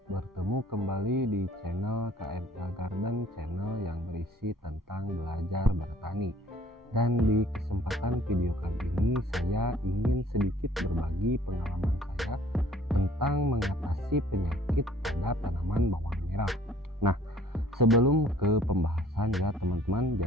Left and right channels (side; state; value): both; normal; correlation 0.56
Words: Bertemu kembali di channel KMA Garden, channel yang berisi tentang belajar bertani. Dan di kesempatan video kali ini saya ingin sedikit berbagi pengalaman saya tentang mengatasi penyakit pada tanaman bawang merah. Nah, sebelum ke pembahasan ya teman-teman,